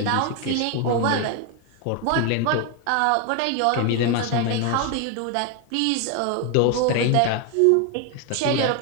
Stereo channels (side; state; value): both; different; correlation 0.01